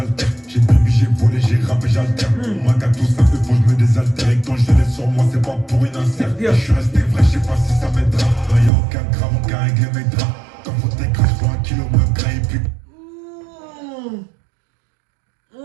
J'ai baby, j'ai volé, j'ai rappé, j'altère. Moi qu'à tout ça, faut que je me désaltère. Et quand je l'ai sur moi, c'est pas pour une insert. Je suis resté vrai, je sais pas si ça m'aidera. Y'a aucun grave, aucun règle mes draps. Comme faut t'écrire, je prends un kilo me gras et puis.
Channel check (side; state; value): left; drops out; at 8.7 s